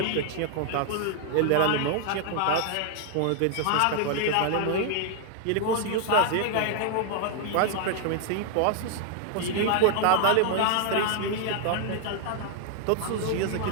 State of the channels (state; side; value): different; both; correlation 0.00